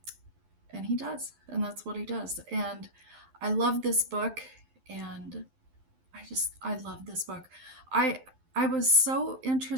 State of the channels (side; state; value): left; late; 12 ms